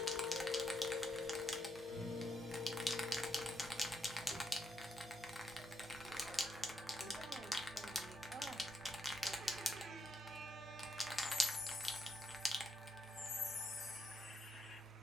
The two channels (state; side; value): normal; both; correlation 0.80